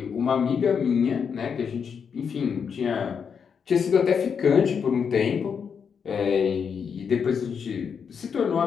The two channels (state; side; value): quieter; right; 6.7 dB